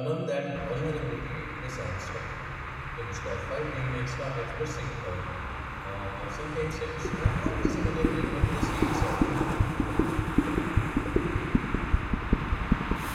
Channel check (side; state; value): both; identical; correlation 1.00